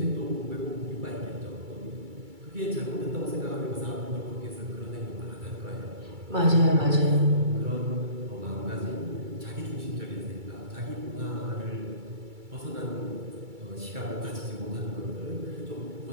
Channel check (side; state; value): left; late; 2.3 ms